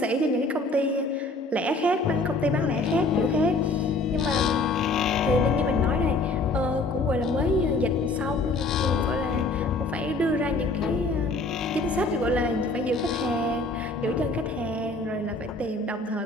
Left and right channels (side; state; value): right; quieter; 3.1 dB